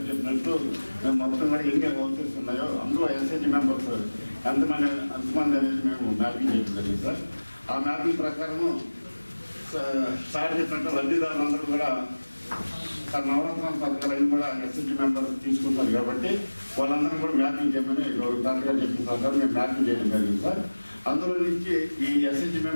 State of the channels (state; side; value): inverted; both; correlation -1.00